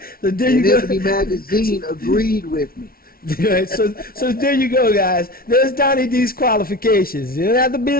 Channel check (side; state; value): right; late; 0.43 ms